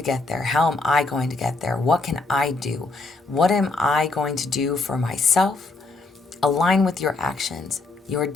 get there? How am I going to get there? What can I do? What am I going to do for myself? Align with your actions, your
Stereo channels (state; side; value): quieter; right; 3.5 dB